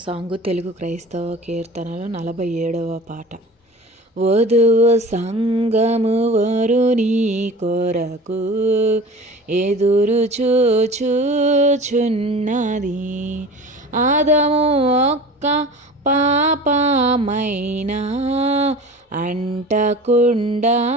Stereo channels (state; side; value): normal; both; correlation 0.38